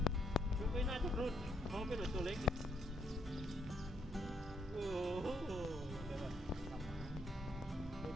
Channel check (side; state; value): both; normal; correlation 0.73